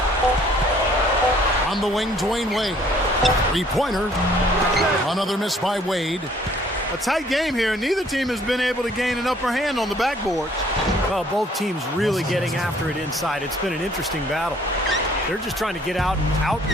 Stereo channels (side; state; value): both; normal; correlation 0.59